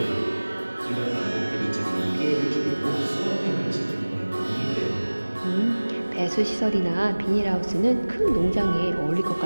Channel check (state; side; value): inverted; both; correlation -1.00